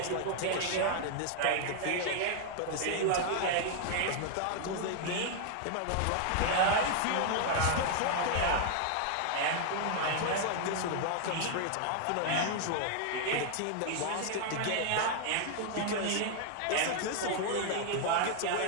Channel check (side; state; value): both; different; correlation 0.00